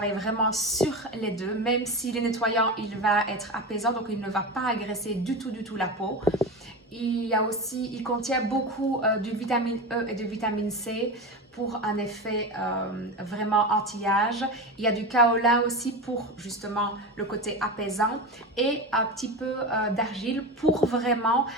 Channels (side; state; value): both; normal; correlation 0.23